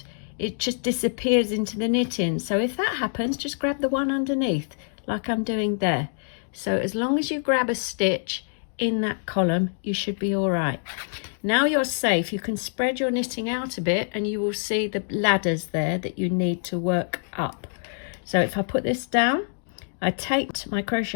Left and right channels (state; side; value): silent; right; digital silence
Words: it just disappears into the knitting. So if that happens, just grab the one underneath like I'm doing there. So as long as you grab a stitch in that column, you should be all right. Now you're safe. You can spread your knitting out a bit and you will see the ladders there that you need to work up. So if I put this down, I take my